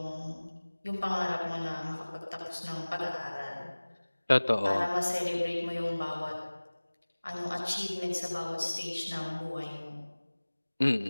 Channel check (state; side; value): inverted; both; correlation -1.00